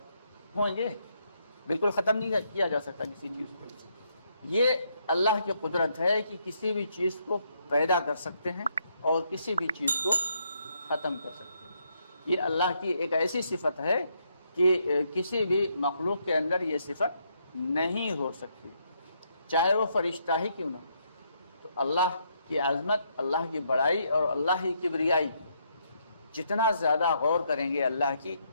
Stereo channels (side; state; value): both; inverted; correlation -0.75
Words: होंगे, बिल्कुल ख़त्म नहीं किया जा सकता किसी चीज़ को। ये अल्लाह की कुदरत है कि किसी भी चीज़ को पैदा कर सकते हैं और किसी भी चीज़ को ख़त्म कर सकते हैं। ये अल्लाह की एक ऐसी सिफत है कि किसी भी मखलूक के अंदर ये सिफत नहीं हो सकती, चाहे वो फरिश्ता ही क्यों ना। तो अल्लाह की अज़मत, अल्लाह की बड़ाई और अल्लाह की किबरियाई, जितना ज़्यादा गौर करेंगे अल्लाह की